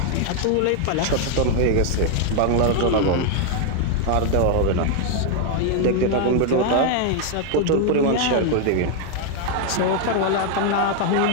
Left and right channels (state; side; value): different; both; correlation 0.00